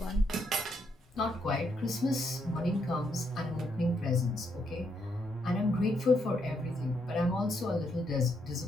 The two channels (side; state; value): both; normal; correlation 0.76